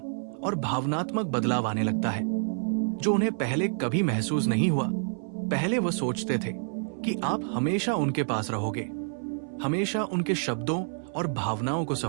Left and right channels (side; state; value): left; silent; 58 dB below the other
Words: और भावनात्मक बदलाव आने लगता है, जो उन्हें पहले कभी महसूस नहीं हुआ। पहले वो सोचते थे कि आप हमेशा उनके पास रहोगे, हमेशा उनके शब्दों और भावनाओं को